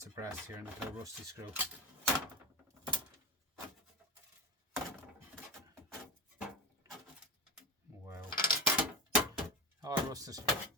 of brass here and a little rusty screw. Wow. All rusted.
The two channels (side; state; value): both; normal; correlation 0.23